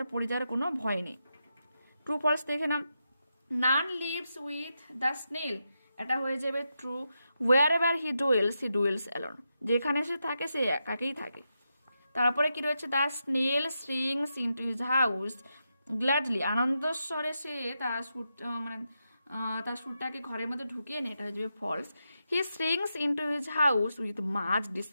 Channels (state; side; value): inverted; both; correlation -0.86